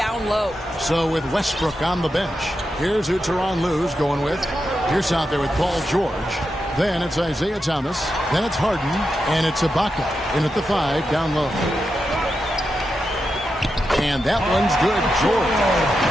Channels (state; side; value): normal; both; correlation 0.88